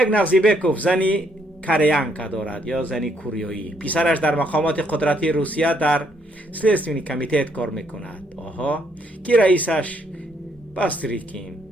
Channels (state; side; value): normal; both; correlation 0.71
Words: بیگ زنی کریانکا دارد یا زنی کوریایی. پسرش در مقامات قدرتی روسیه در سلیستونی کمیتیت کار میکند. که رئیسش باستریکین